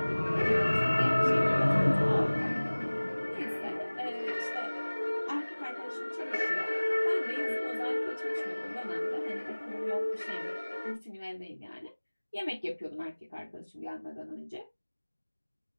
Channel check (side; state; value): both; inverted; correlation -1.00